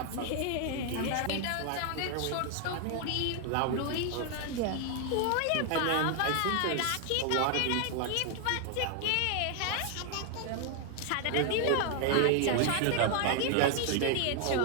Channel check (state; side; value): different; both; correlation 0.00